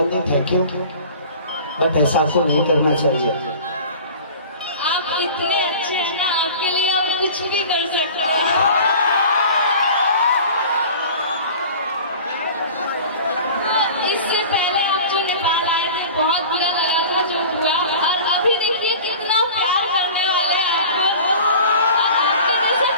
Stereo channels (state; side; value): inverted; both; correlation -0.40